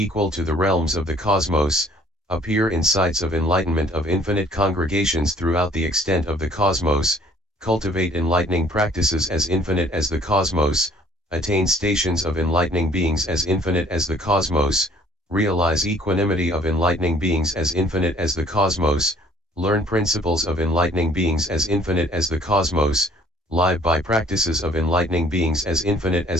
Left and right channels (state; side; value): normal; both; correlation 0.57